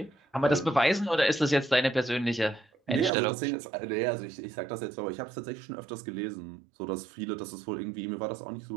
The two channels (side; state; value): left; drops out; at 3.1 s